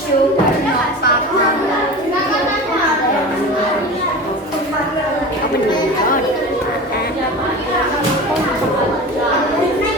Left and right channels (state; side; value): normal; both; correlation 0.32